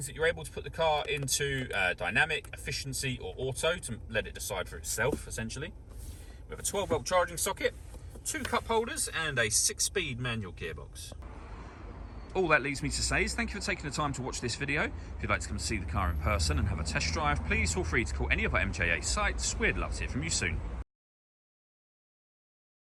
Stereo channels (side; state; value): both; identical; correlation 1.00